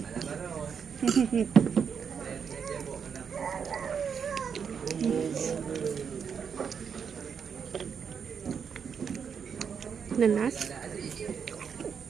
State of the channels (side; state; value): left; quieter; 6.8 dB